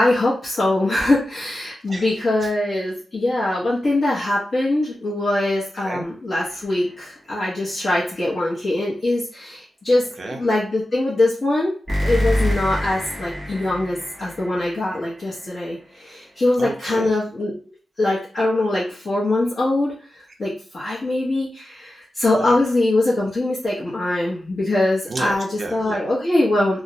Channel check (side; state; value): both; normal; correlation 0.93